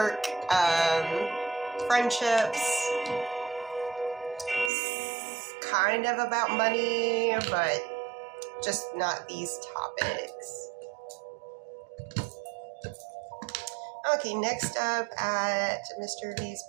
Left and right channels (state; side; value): drops out; left; at 4.7 s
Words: friendships, kind of about money, but just not these topics. Okay, next up at Mr. V's